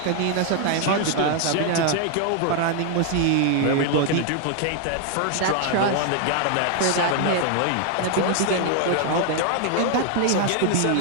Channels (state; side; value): different; both; correlation 0.00